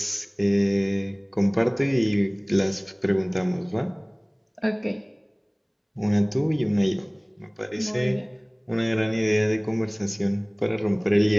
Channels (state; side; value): identical; both; correlation 1.00